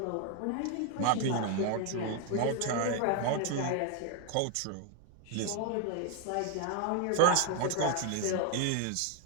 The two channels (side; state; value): both; different; correlation 0.01